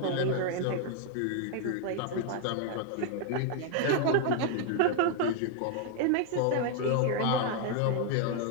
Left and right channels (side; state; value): both; different; correlation 0.00